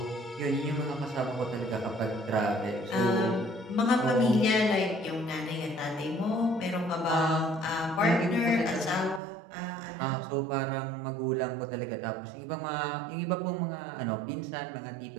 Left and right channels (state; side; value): drops out; left; at 9.2 s